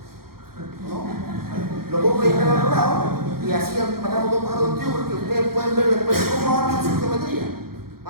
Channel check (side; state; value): left; late; 0.94 ms